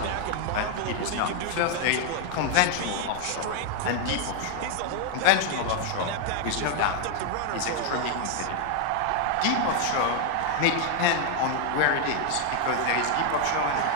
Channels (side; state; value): both; different; correlation 0.00